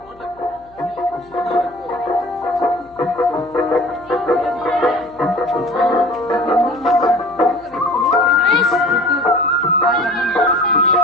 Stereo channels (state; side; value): noise; left; hum, 28 dB below the sound